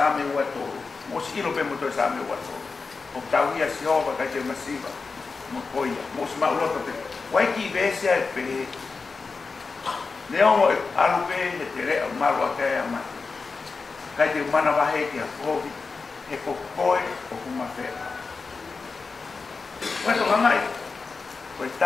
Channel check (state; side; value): quieter; right; 4.4 dB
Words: wato. Mo silo pe mo to same wato. O tawia si ova ka te masiva. Mo koia, mo sma ulo pe. Wai ki vese ai pe. Leo alu pe he te re marwa ka ya ma. Ka te mana va he ki a kovi. He ko koe o kuma fe. Wai to ngai. Ko